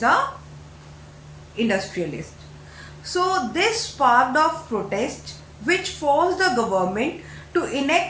the industrialists. So this sparked off protest which forced the government to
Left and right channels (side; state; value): both; identical; correlation 1.00